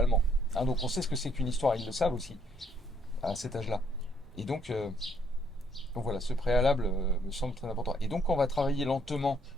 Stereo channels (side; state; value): both; normal; correlation 0.68